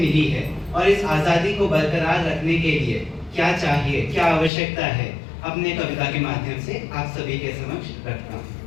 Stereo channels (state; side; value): drops out; right; at 4.5 s